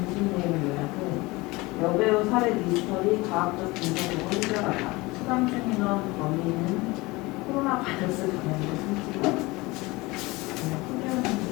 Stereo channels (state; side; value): quieter; right; 22.5 dB